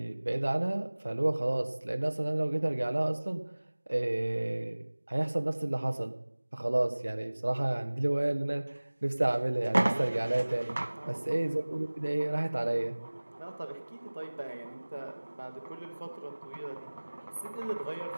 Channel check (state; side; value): inverted; both; correlation -1.00